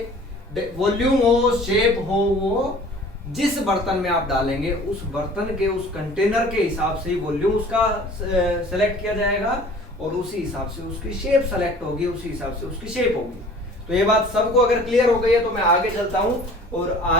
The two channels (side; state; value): both; normal; correlation 0.47